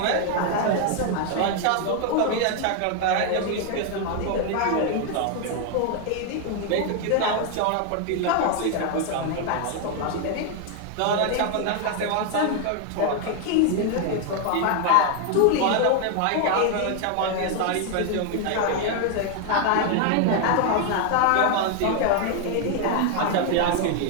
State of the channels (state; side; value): different; both; correlation 0.00